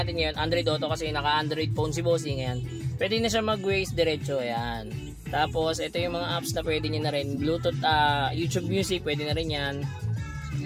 ngayon, Android Auto kasi naka-Android phone si bossing. Ayan. Pwede na siya mag-Waze diretso. Ayan. Tapos ito yung mga apps na pwede nyo na rin. Bluetooth, YouTube Music, pwede na rin yan.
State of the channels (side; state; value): both; identical; correlation 1.00